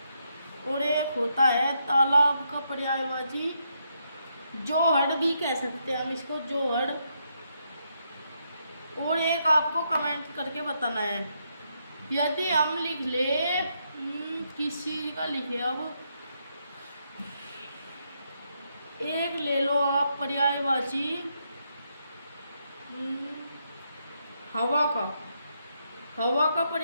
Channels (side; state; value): both; inverted; correlation -0.78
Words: और एक होता है तालाब का पर्यायवाची जोहड़ भी कह सकते हैं हम इसको, जोहड़। और एक आपको कमेंट करके बताना है। यदि हम लिख ले किसी का लिखे, अब एक ले लो आप पर्यायवाची हवा का, हवा का